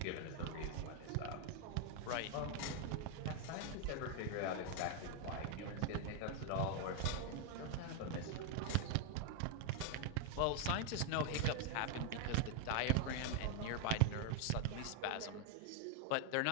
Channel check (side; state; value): both; different; correlation 0.00